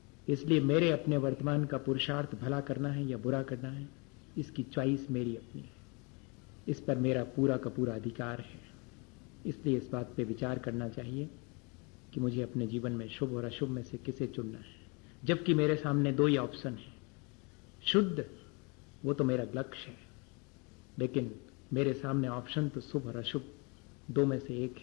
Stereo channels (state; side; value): quieter; right; 30.7 dB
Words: इसलिए मेरे अपने वर्तमान का पुरुषार्थ भला करना है या बुरा करना है, इसकी चॉइस मेरी अपनी है, इस पर मेरा पूरा का पूरा अधिकार है। इसलिए इस बात पे विचार करना चाहिए कि मुझे अपने जीवन में शुभ और अशुभ में से किसे चुनना है, जबकि मेरे सामने दो ही ऑप्शन है। शुद्ध वो तो मेरा लक्ष्य है, लेकिन मेरे सामने ऑप्शन तो शुभ और अशुभ दो में से एक